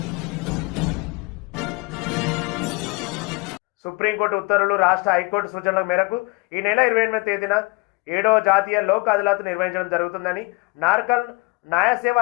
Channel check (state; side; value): quieter; right; 26.7 dB